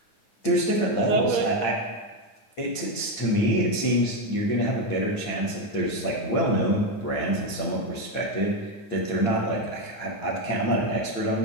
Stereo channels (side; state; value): right; late; 8.8 ms